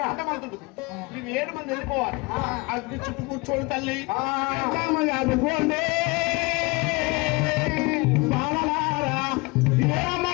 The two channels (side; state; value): right; quieter; 25.9 dB